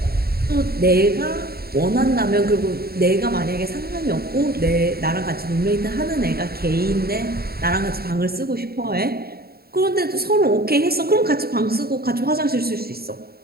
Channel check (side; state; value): left; late; 0.45 ms